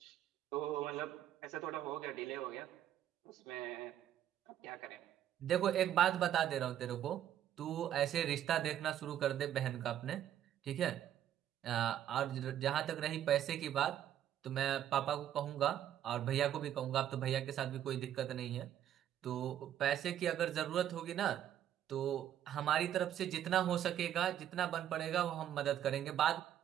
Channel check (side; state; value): left; quieter; 10.9 dB